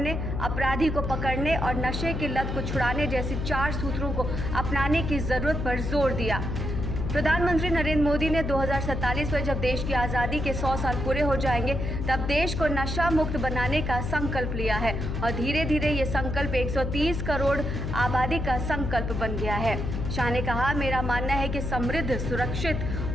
अपराधी को पकड़ने और नशे की लत को छुड़ाने जैसी 4 सूत्रों को अपनाने की जरूरत पर जोर दिया। प्रधानमंत्री नरेंद्र मोदी ने 2047 में जब देश की आज़ादी के 100 साल पूरे हो जाएंगे तब देश को नशा मुक्त बनाने का संकल्प लिया है और धीरे धीरे ये संकल्प 130 करोड़ आबादी का संकल्प बन गया है। शाह ने कहा, मेरा मानना है कि समृद्ध, सुरक्षित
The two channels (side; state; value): left; noise; hum, 3 dB below the sound